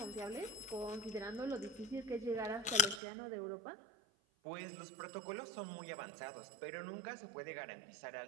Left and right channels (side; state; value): left; drops out; at 3.0 s